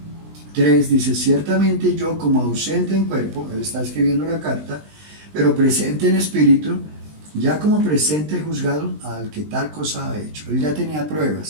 3, dice: ciertamente yo, como ausente en cuerpo, él está escribiendo la carta, pero presente en espíritu, ya como presente he juzgado al que tal cosa ha hecho. Él ya tenía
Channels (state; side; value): late; left; 20 ms